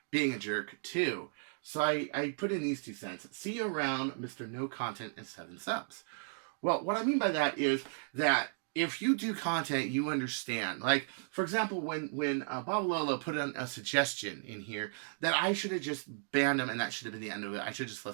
being a jerk too. So I put in these 2 cents. See you around, Mr. No Content and 7 subs. Well, what I mean by that is that if you do content, you understand. Like, for example, when Bob Lolo put in a suggestion in here that I should have just banned him and that should have been the end of it. I should have just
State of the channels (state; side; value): silent; left; digital silence